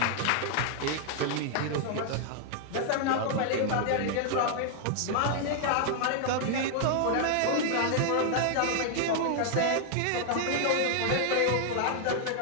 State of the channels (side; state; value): both; different; correlation 0.00